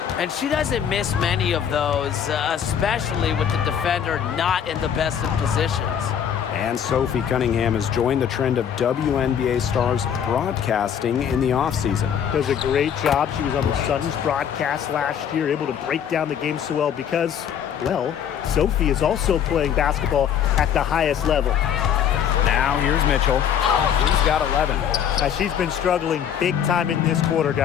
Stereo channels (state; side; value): quieter; right; 8.6 dB